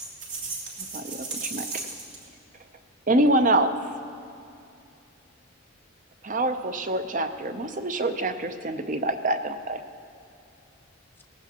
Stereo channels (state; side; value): normal; both; correlation 0.04